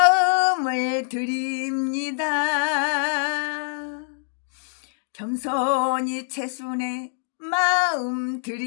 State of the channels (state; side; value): silent; right; 57 dB below the other